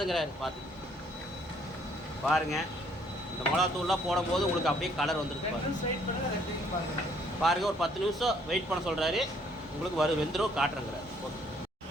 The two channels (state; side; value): normal; both; correlation 0.64